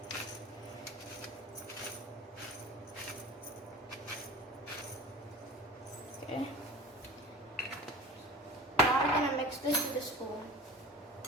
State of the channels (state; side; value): normal; both; correlation 0.38